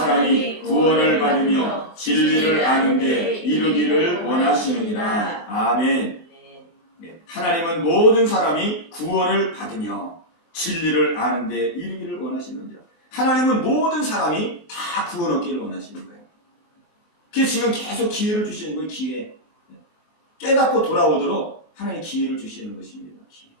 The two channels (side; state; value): right; late; 23 ms